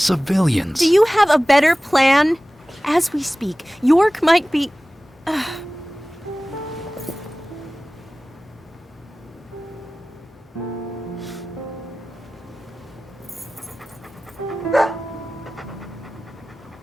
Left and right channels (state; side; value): normal; both; correlation 0.97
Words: Do you have a better plan? As we speak, York might be...